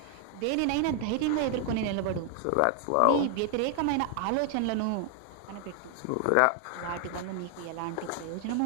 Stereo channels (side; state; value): both; different; correlation 0.00